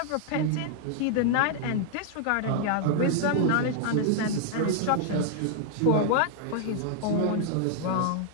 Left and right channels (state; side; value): different; both; correlation 0.00